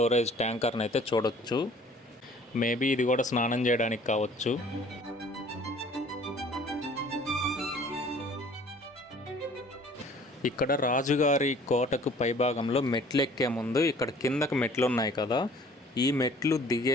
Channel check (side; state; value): both; normal; correlation 0.52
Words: ట్యాంకర్ని అయితే చూడొచ్చు. మేబీ ఇది కూడా స్నానం చేయడానికి కావచ్చు. ఇక్కడ రాజుగారి కోటకు పైభాగంలో మెట్లు ఎక్కే ముందు ఇక్కడ కిందకు మెట్లు ఉన్నాయి కదా, ఈ మెట్లు